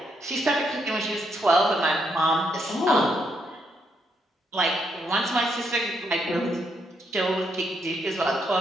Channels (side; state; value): both; normal; correlation 0.77